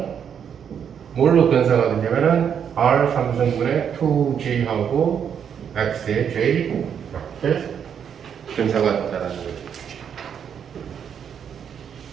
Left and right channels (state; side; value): quieter; left; 8.0 dB